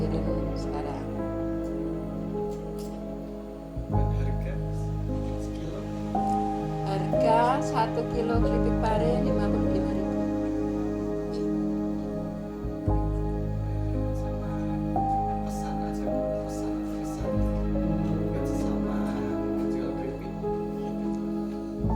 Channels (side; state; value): both; identical; correlation 1.00